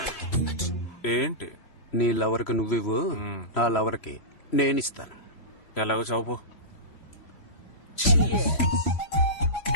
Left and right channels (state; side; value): late; right; 3.0 ms